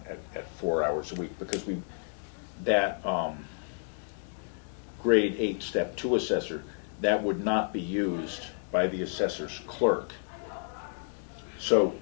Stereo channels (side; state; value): right; silent; 57 dB below the other